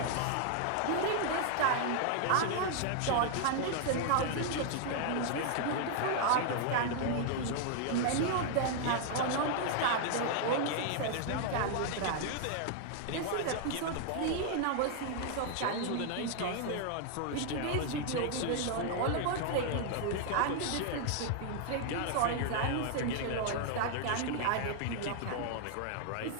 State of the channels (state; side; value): different; both; correlation 0.00